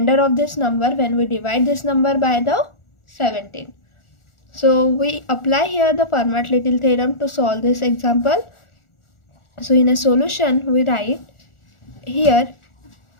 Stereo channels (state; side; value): late; right; 1.4 ms